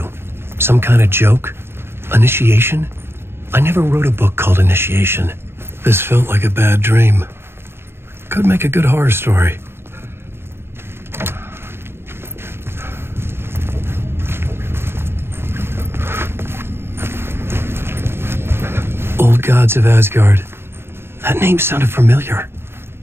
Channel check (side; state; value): left; late; 0.11 ms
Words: Some kind of joke? Initiation? I never wrote a book called Initiation. This felt like a bad dream. Could make a good horror story. Old Gods of Asgard. That name sounded familiar.